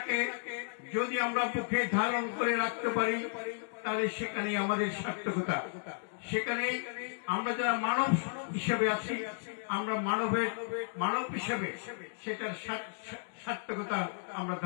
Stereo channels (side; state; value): right; silent; digital silence